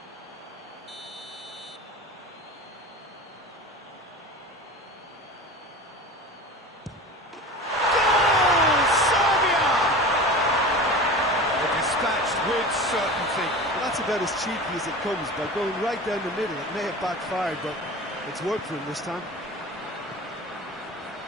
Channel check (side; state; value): both; normal; correlation 0.34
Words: With certainty. Well, that's about as cheeky as it comes, by going right down the middle. It may have backfired, but it's worked for him this time.